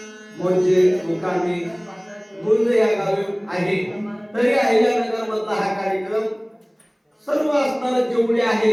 म्हणजे मुकामी मुंज या गावी आहे। तरी अहिल्यानगर मधला हा कार्यक्रम सर्व असणारे जेवढे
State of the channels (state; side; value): identical; both; correlation 1.00